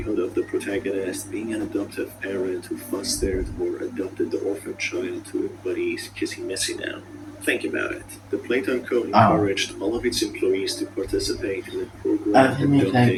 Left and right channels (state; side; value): identical; both; correlation 1.00